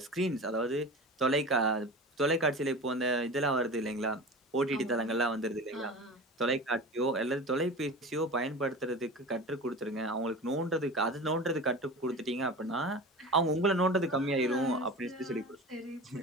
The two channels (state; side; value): normal; both; correlation 0.32